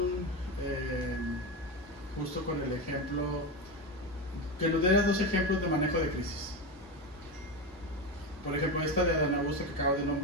justo con el ejemplo, que nos dieras dos ejemplos de manejo de crisis. Por ejemplo, esta de Adán Augusto que acabo de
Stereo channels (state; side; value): normal; both; correlation 0.17